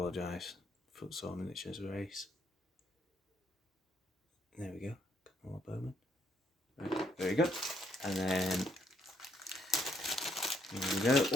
Footsore Miniatures race. There we go. Couple more bowmen. Right, very good. And then here we go.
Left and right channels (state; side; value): normal; both; correlation 0.71